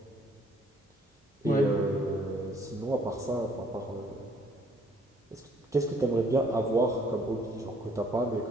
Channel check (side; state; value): both; normal; correlation 0.62